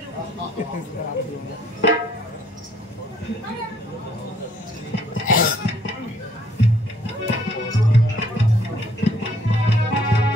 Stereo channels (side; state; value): both; normal; correlation 0.63